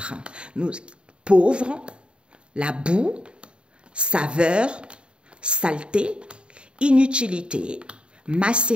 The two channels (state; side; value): late; left; 0.053 ms